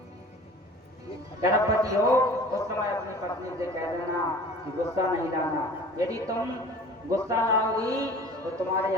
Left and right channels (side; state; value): both; normal; correlation 0.44